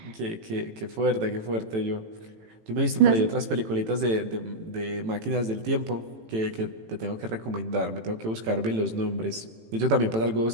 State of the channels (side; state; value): left; late; 18 ms